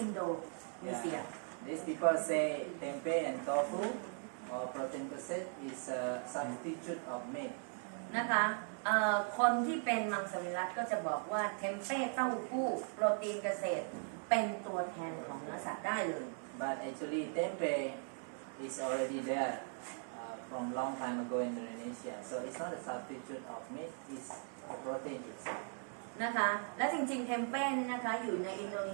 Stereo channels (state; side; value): silent; left; 52 dB below the other